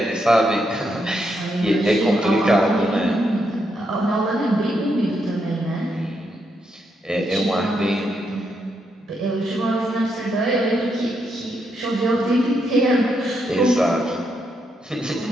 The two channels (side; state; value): both; normal; correlation 0.80